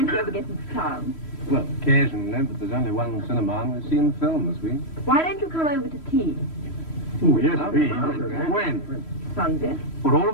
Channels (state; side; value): late; right; 3.1 ms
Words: you ever get into town? Well, occasionally, but there's only one cinema and we've seen the film this week. Why don't you come over to tea? Oh, yes, please. When? Sunday. For all